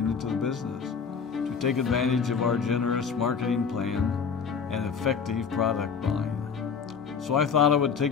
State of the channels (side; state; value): right; quieter; 6.2 dB